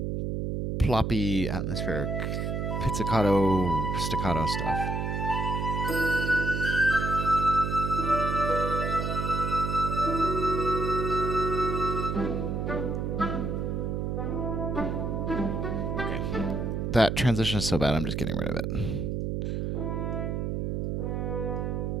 ploppy, atmospheric pizzicato, staccato stuff. Okay. That transition is so bad, I'm just getting rid of it.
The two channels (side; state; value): right; noise; hum, 1 dB below the sound